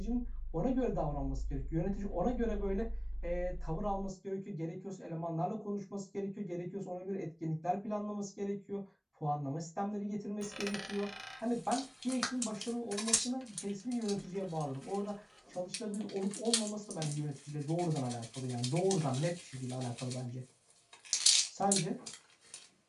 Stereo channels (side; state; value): both; identical; correlation 1.00